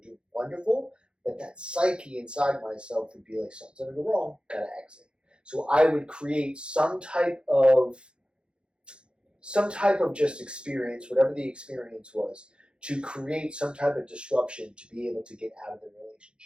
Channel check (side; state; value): left; late; 0.054 ms